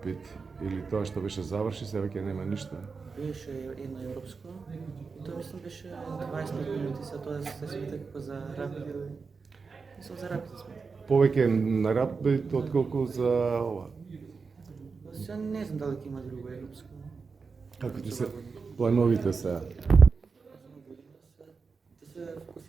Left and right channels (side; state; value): left; quieter; 4.9 dB